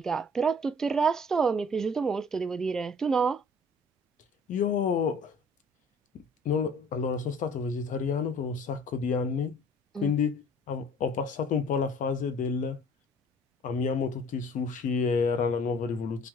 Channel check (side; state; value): both; normal; correlation 0.51